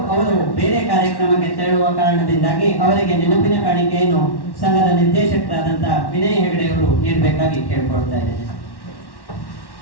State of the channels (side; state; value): right; late; 1.1 ms